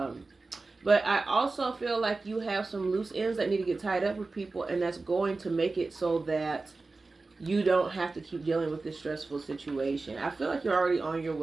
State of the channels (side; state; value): left; quieter; 3.6 dB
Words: I also feel like you have some loose ends that need to get tied up with people, and that's going to make it so that you don't have to keep dealing with this stressful situation. I feel like you're already on your